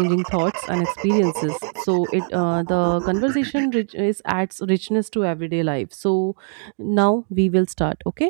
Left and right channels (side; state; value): left; silent; digital silence